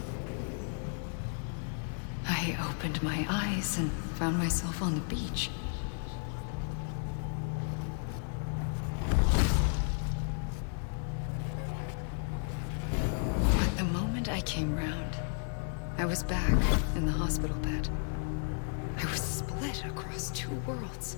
I opened my eyes and found myself on the beach. But the moment I came round, I was back in the hospital bed. I was split across two worlds.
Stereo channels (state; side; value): silent; right; 56 dB below the other